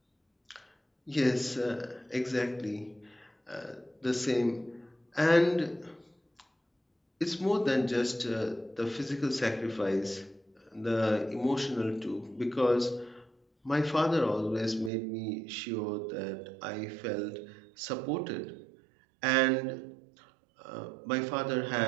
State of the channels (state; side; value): drops out; left; at 14.9 s